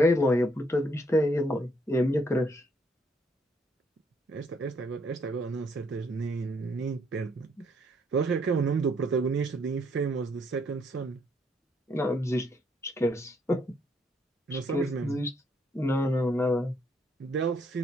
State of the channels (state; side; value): normal; both; correlation 0.70